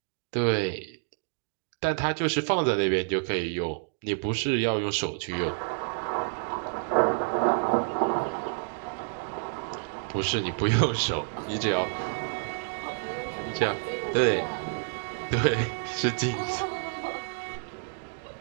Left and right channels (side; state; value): left; silent; digital silence